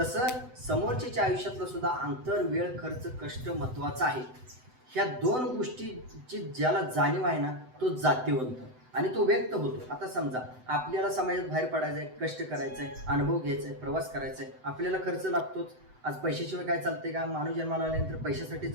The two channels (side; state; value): left; late; 7.9 ms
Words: समोरच्याच्या आयुष्यातलं सुद्धा अंतर, वेळ, खर्च, कष्ट महत्त्वाचा आहे. ह्या 2 गोष्टीची ज्याला जाणीव आहे ना तो जातीवंत आणि तो व्यक्त होतो. आता समजा आपल्याला समाजात बाहेर पडायचं आहे, कष्ट करायचं आहे, अनुभव घ्यायचा आहे, प्रवास करायचा आहे, आपल्याला खर्च लागतोच. आज पैशाशिवाय काय चालते का? माणूस जन्माला आल्यानंतर पैशासाठी